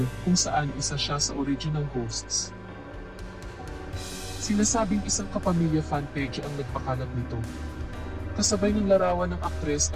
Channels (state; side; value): identical; both; correlation 1.00